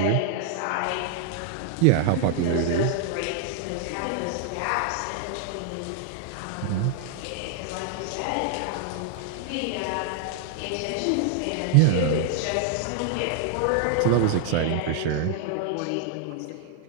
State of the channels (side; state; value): both; different; correlation 0.00